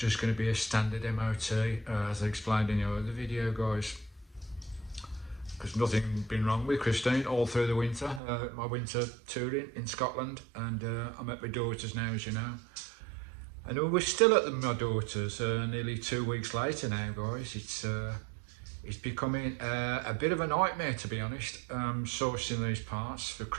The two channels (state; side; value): drops out; left; at 8.2 s